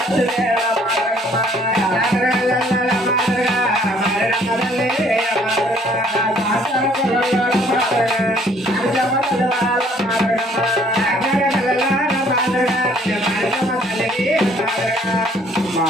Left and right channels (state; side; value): normal; both; correlation 0.60